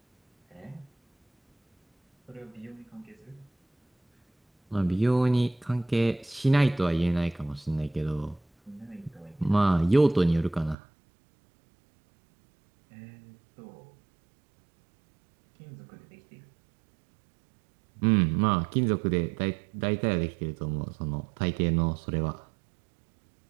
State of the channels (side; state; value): left; drops out; at 10.8 s